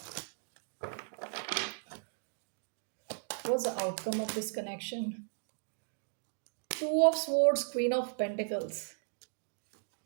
What's the outcome of this connection? 2 of swords, queen of pentacles,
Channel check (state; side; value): silent; left; digital silence